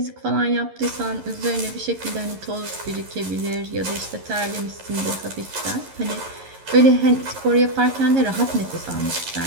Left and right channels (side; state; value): left; late; 11 ms